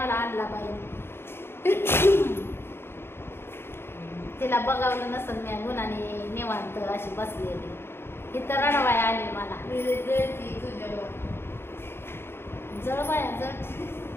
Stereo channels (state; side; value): late; right; 0.11 ms